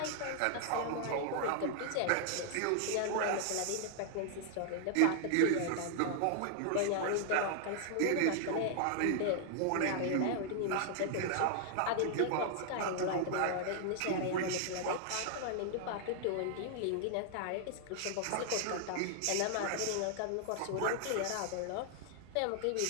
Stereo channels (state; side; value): different; both; correlation 0.00